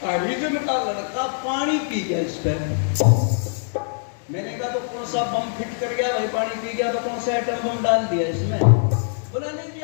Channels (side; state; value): right; silent; digital silence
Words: हरिजन का लड़का पानी पी गया इस पे। मैंने कहा तो कौन सा बम फिट कर गया भाई, पानी पी गया तो कौन सा एटम बम डाल दिया इसमें? बोला नहीं जी